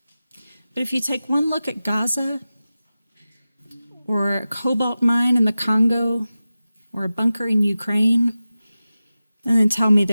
but if you take one look at Gaza, or a cobalt mine in the Congo, or a bunker in Ukraine, and then tell me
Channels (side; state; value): both; inverted; correlation -0.95